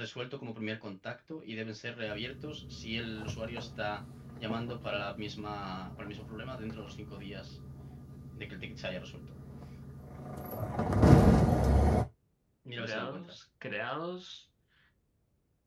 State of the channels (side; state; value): both; identical; correlation 1.00